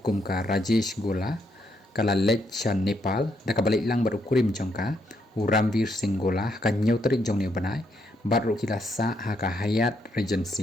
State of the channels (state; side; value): normal; both; correlation 0.75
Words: kum ka Rajesh Gola kala lech shan Nepal da kabalik lang baru kurim jongka Ramvir Singh Gola ka Hynñiewtrep jong ne banai baru kila sa haka hayat